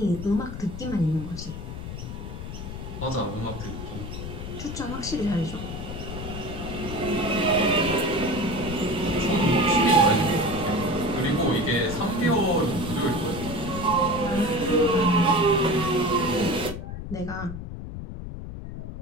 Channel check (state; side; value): noise; left; rumble, 8 dB below the sound